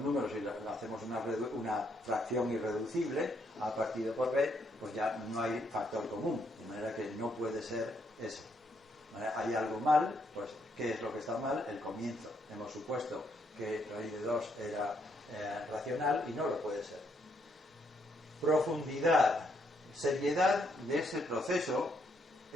y hacemos una fracción irreducible, a partido por b, pues ya no hay factor común, de manera que no puede ser eso. Hay algo mal, pues ¿qué es lo que está mal? El comienzo. Hemos supuesto que raíz de 2 era racional y no lo puede ser. Profundidad, seriedad de ese proceso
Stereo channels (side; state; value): both; normal; correlation 0.74